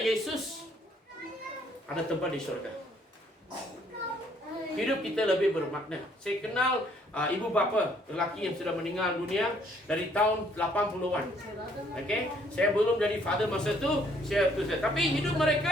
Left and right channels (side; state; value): both; normal; correlation 0.65